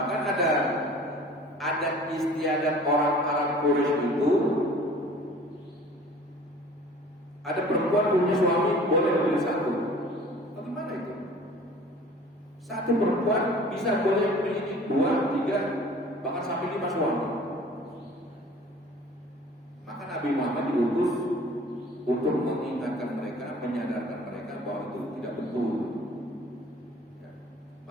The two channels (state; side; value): normal; both; correlation 0.47